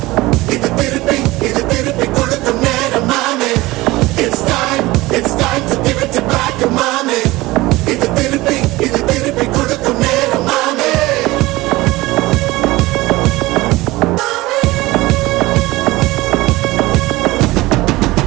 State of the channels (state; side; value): quieter; left; 19.7 dB